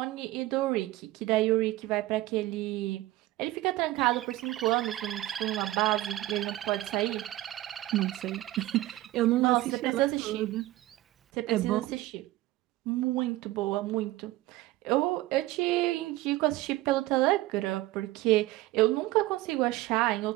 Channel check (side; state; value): left; quieter; 17.1 dB